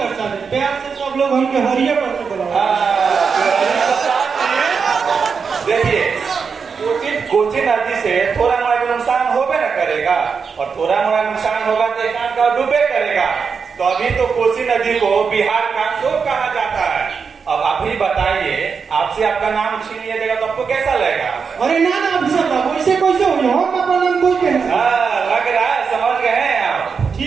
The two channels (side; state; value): left; quieter; 5.7 dB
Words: है प्यार से सब लोग हमके हरिये पर से बुलाओ देखिए कोसी नदी से थोड़ा मोड़ा भी नुकसान होबे न करेगा और थोड़ा मोड़ा नुकसान होगा तो एक का डूबे करेगा तो अभी तो कोसी नदी को बिहार का शोक कहा जाता है। अब आप ही बताइए आपसे आपका नाम छीन लिया जाएगा तो आपको कैसा लगेगा? अरे ना अफसर साहब ऐसे कैसे हो हम अपना नाम कोई के लग रहा है समझ गए हैं आप।